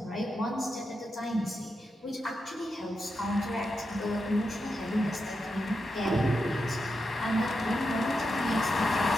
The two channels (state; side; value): normal; both; correlation 0.87